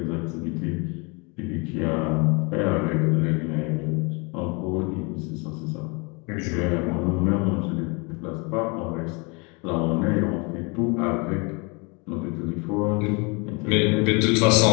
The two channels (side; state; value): right; quieter; 30.4 dB